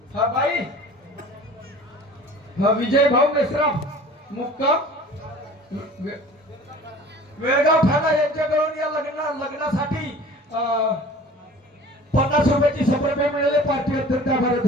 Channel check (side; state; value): both; normal; correlation 0.44